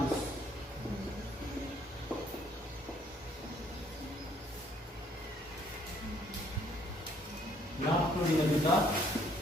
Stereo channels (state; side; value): normal; both; correlation 0.64